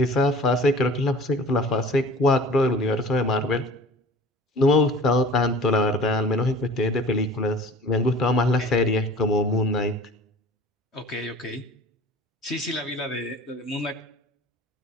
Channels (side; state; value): both; normal; correlation 0.44